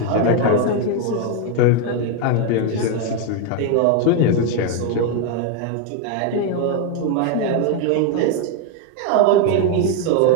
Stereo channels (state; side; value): different; both; correlation 0.01